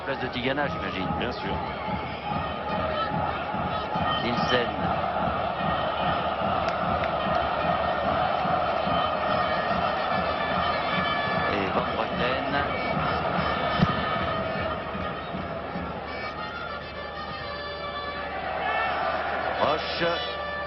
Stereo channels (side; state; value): both; identical; correlation 1.00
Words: de Tigana, j'imagine. Bien sûr. Nielsen. Et Van Breukelen.